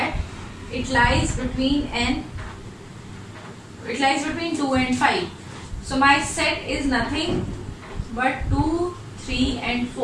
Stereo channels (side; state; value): both; identical; correlation 1.00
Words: it lies between 2 and 5. So my set is nothing but 2, 3 and